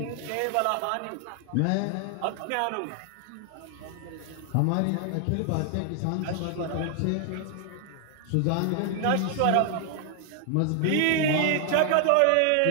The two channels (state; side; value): different; both; correlation 0.00